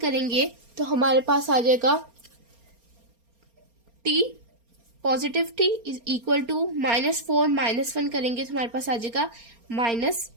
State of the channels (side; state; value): left; late; 4.3 ms